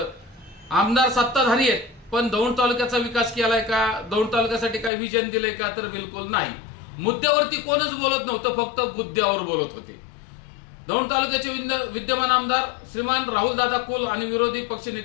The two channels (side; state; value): right; drops out; at 4.9 s